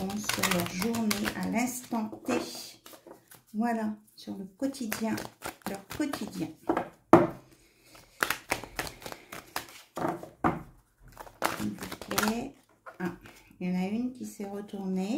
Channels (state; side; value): identical; both; correlation 1.00